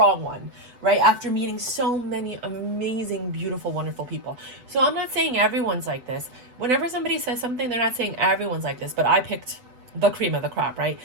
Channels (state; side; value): late; left; 8.0 ms